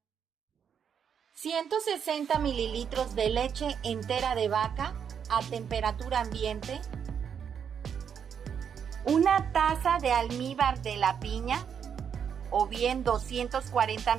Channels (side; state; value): left; quieter; 7.6 dB